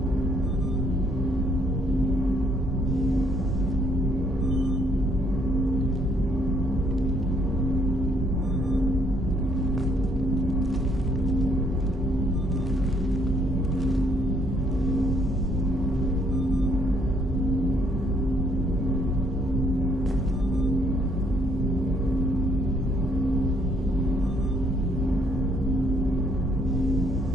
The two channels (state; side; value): normal; both; correlation 0.68